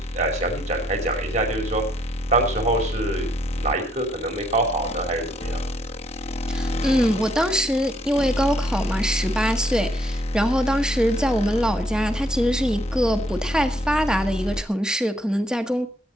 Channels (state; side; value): normal; both; correlation 0.70